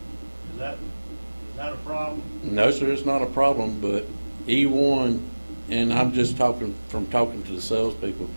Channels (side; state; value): both; inverted; correlation -1.00